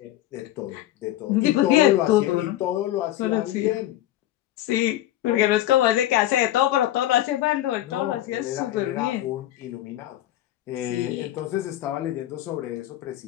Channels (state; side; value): quieter; right; 13.7 dB